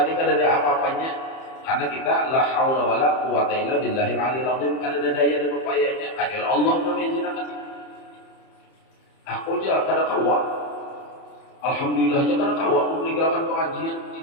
ni kada ada apa-apanya karena kita la haula wala quwata illa billahil aliyil azim kada ada daya dan upayanya kecuali Allah yang mengizinkan. Aku aja kada kawa. Alhamdulillah aja kada kawa meninggalkan pengajian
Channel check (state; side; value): late; right; 30 ms